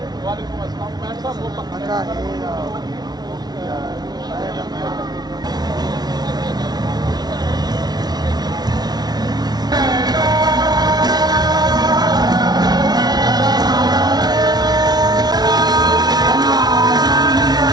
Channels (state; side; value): late; left; 0.19 ms